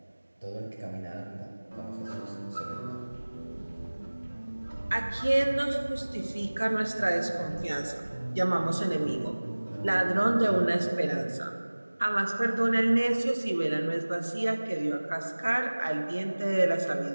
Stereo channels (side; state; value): both; inverted; correlation -1.00